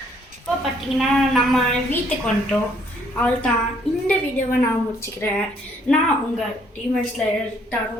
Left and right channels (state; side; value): normal; both; correlation 0.66